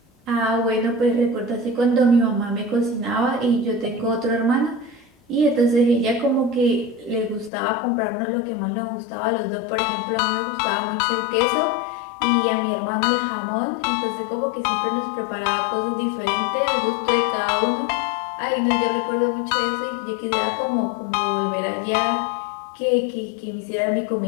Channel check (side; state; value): right; drops out; at 7.5 s